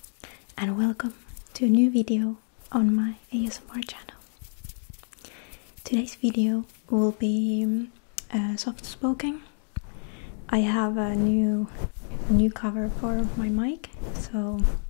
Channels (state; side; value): silent; right; 57 dB below the other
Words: And welcome to a new video on my ASMR channel. Today's video will be soft spoken. I have a new cover for my mic, so